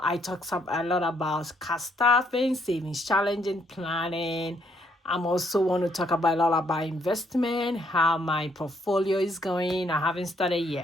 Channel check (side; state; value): both; normal; correlation 0.71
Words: I talk a lot about cash staffing, savings challenging, planning. I'm also want to talk about a lot about investment, how my portfolio is going. I haven't started